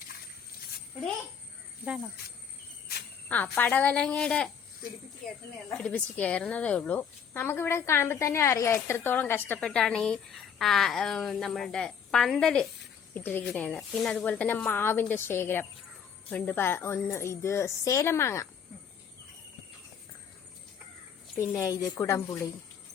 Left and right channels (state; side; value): quieter; right; 7.4 dB